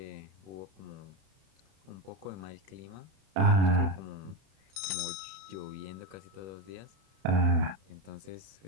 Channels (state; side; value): late; left; 31 ms